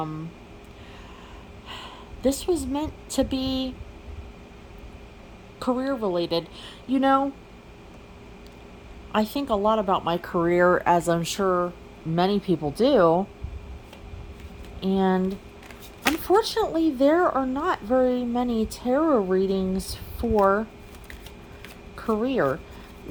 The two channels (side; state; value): both; identical; correlation 1.00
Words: This was meant to be career related. I think a lot about my career, as I'm sure many people do. And unfortunately, there are not very many tarot readings for career.